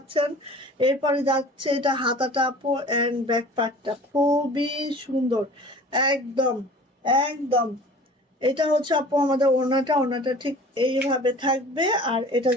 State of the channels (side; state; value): both; normal; correlation 0.44